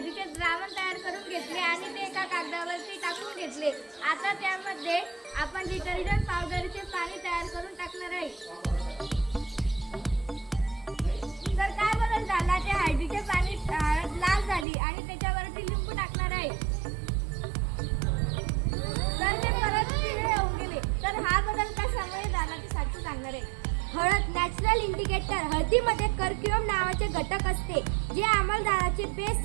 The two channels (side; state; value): left; drops out; at 14.7 s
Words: द्रावण तयार करून घेतले आणि ते एका कागदावरती टाकून घेतले। आता त्यामध्ये आपण डिटर्जंट पावडरचे पाणी तयार करून टाकणार आहे। तर काय बदल झाला, ते हळदीचे पाणी लाल झाली आणि त्याच्यावरती लिंबू टाकणार आहे तर ते परत पिवळे होऊन गेले। तर हा बदल कशामुळे झाला ते साक्षी सांगणार आहे। हळद नॅचरल इंडिकेटर। हळदीमध्ये कर्क्युम नावाचे घटक असते जे आम्लदाराचे बेस